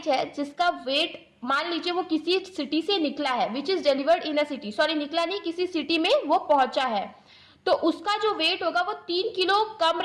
है जिसका वेट मान लीजिए वो किसी सिटी से निकला है, which is delivered in a city, sorry निकला नहीं, किसी सिटी में वो पहुंचा है, तो उसका जो वेट होगा वो 3 किलो कम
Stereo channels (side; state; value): both; identical; correlation 1.00